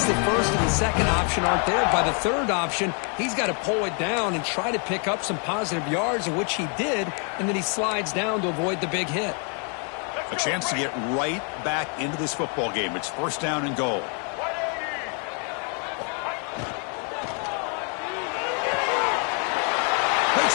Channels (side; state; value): right; quieter; 39.8 dB